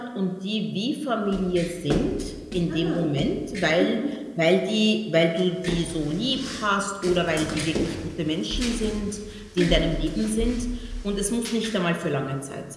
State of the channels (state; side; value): identical; both; correlation 1.00